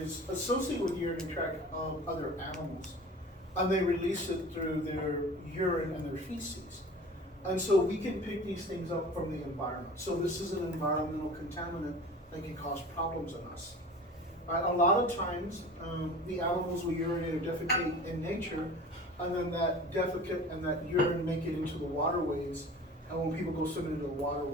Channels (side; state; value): both; normal; correlation 0.40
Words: associated with urinary tract of other animals, and they release it through their urine and their feces. And so we can pick these things up from the environment. So this is an environmental contaminant that can cause problems in us. A lot of times, the animals will urinate or defecate in nature, and then that defecate and that urine make it into the waterways. And when people go swimming into the